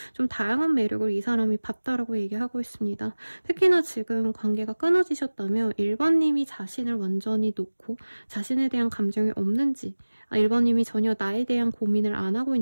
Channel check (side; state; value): both; inverted; correlation -1.00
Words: 좀 다양한 매력을 이 사람이 봤다라고 얘기하고 있습니다. 특히나 지금 관계가 끊어지셨다면 1번님이 자신을 완전히 놓고 자신에 대한 감정이 없는지 1번님이 전혀 나에 대한 고민을 안 하고